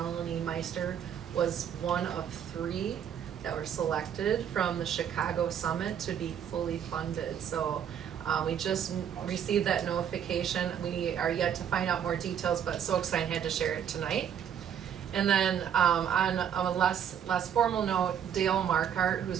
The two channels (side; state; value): left; quieter; 8.9 dB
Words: Meister was one of 3 that were selected from the Chicago Summit to be fully funded. So we just received that notification. We are yet to find out more details, but so excited I had to share it tonight. And then on a less formal note, Dale Markart,